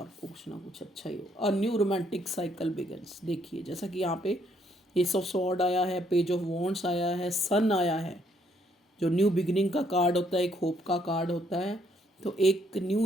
कुछ ना कुछ अच्छा ही हो। A new romantic cycle begins. देखिए जैसा कि यहाँ पे एस ऑफ सॉर्ड आया है, पेज ऑफ वॉन्ड्स आया है, सन आया है, जो न्यू बिगिनिंग का कार्ड होता है, एक होप का कार्ड होता है। तो एक न्यू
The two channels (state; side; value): normal; both; correlation 0.70